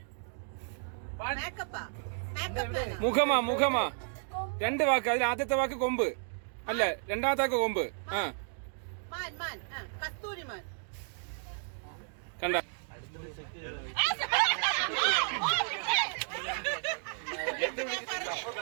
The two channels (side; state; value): left; silent; 56 dB below the other